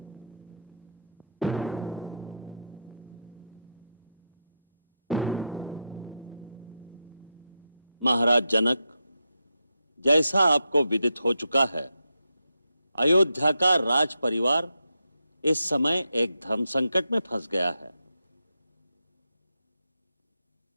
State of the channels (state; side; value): inverted; both; correlation -0.83